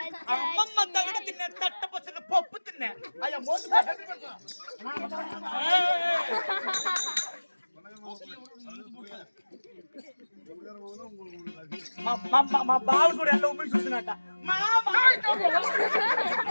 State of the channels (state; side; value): inverted; both; correlation -1.00